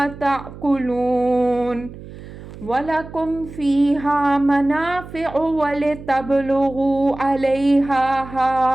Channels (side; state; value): right; noise; hum, 15 dB below the sound